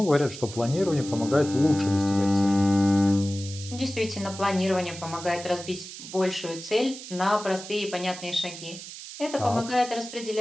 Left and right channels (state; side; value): noise; right; hiss, 12 dB below the sound